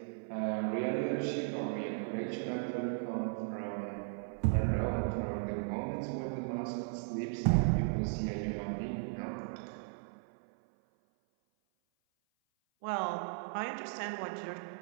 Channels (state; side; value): silent; left; 54 dB below the other